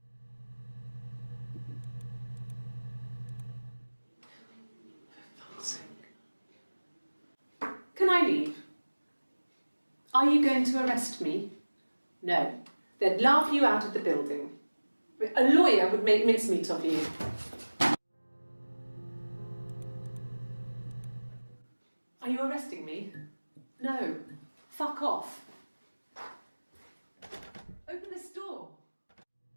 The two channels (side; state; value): both; inverted; correlation -1.00